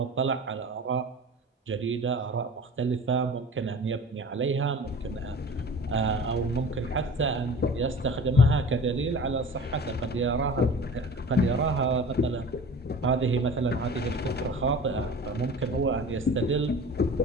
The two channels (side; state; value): both; normal; correlation 0.40